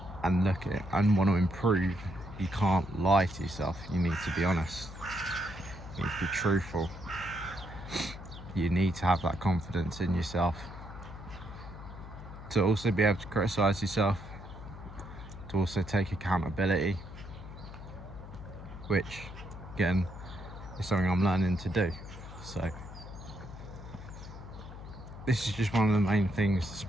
and look at it and want to improve, you can't lie to yourself. You need to be honest. You need to be truthful. You need to have that confidence in yourself to also be able to criticize yourself, to also take accountability, which again is something I'm learning to do. So this is just one of the main things the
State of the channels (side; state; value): left; noise; hum, 13 dB below the sound